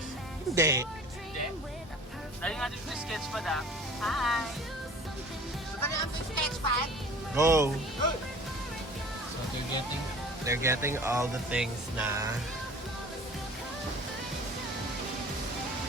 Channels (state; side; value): normal; both; correlation 0.45